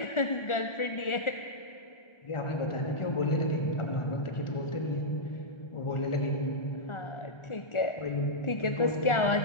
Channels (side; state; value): right; late; 1.4 ms